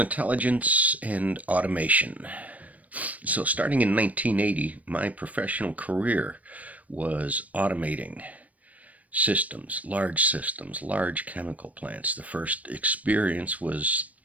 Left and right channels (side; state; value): left; late; 0.070 ms